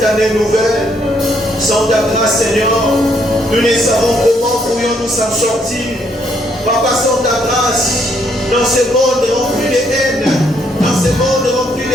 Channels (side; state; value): both; normal; correlation 0.71